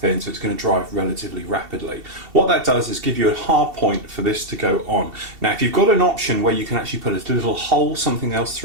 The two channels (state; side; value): late; left; 2.7 ms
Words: so it's going to dry relatively rapidly. What that does is give you a hard point for this to go on. Now if you've got an option where you can actually put a little hole, something else